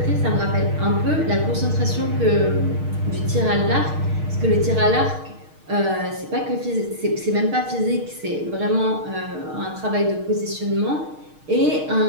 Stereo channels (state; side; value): late; left; 6.5 ms